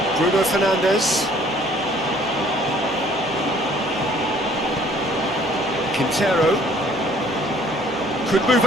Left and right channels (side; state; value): both; normal; correlation 0.57